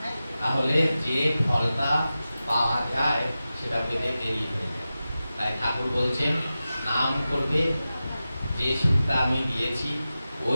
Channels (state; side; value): inverted; both; correlation -0.94